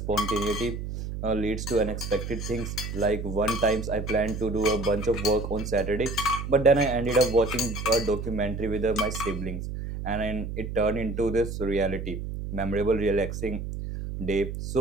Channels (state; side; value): noise; right; hum, 6 dB below the sound